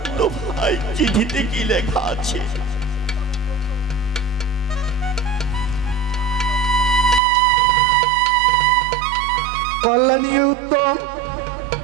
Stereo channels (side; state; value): left; drops out; at 7.2 s